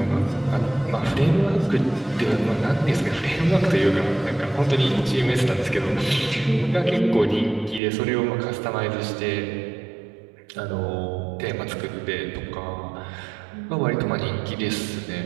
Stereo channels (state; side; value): drops out; left; at 7.8 s